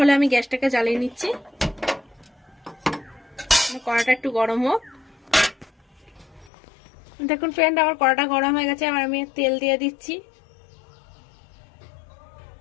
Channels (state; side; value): drops out; right; at 6.5 s